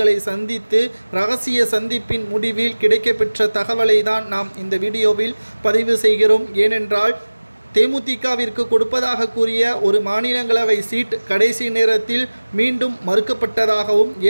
சந்தித்து ரகசிய சந்திப்பின் முடிவில் கிடைக்கப்பெற்ற தகவலை தான் நாம் இந்த வீடியோவில் பதிவு செய்கிறோம். ஏனென்றால் தேமுதிகவிற்கு கொடுப்பதாக கூறிய ஒரு மாநிலங்களவை சீட் கடைசி நேரத்தில் மீண்டும் மறுக்கப்பட்டதாகவும்,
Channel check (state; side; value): inverted; both; correlation -1.00